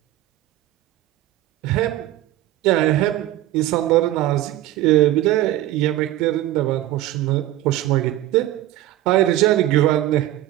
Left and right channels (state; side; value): quieter; left; 14.4 dB